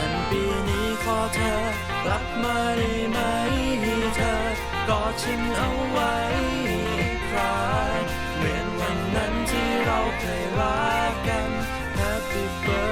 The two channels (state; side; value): identical; both; correlation 1.00